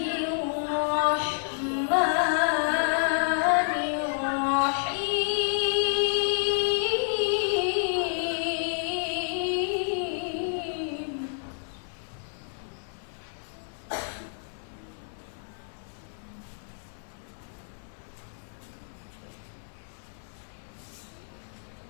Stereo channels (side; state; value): right; silent; digital silence